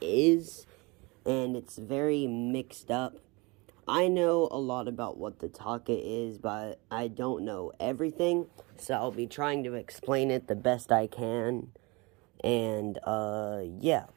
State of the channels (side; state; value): left; quieter; 26.2 dB